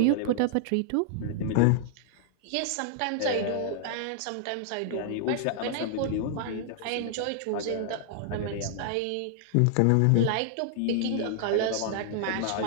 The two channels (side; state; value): both; different; correlation -0.01